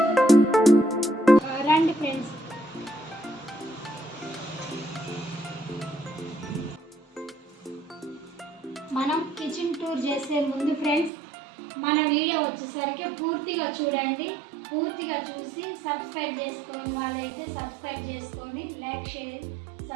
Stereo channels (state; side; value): drops out; left; at 11.1 s